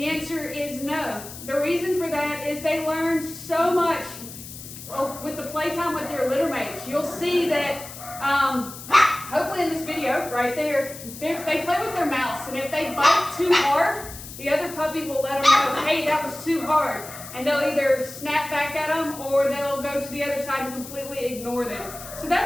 answer is no. The reason for that is they learn so much with the playtime with their litter mates. You'll see that, hopefully in this video right there, they play with their mouths. And if they bite too hard, the other puppy will let them know, hey, that was too hard. And they'll either snap back at them or they'll go to the other side and completely ignore them. So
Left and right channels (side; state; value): left; noise; hiss, 13 dB below the sound